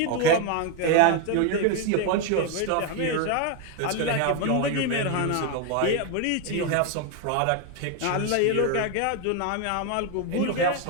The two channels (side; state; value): both; different; correlation 0.01